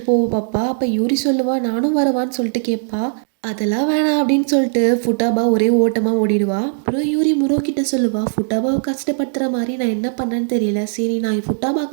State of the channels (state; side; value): silent; left; digital silence